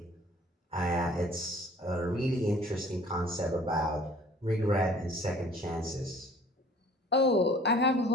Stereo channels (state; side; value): normal; both; correlation 0.52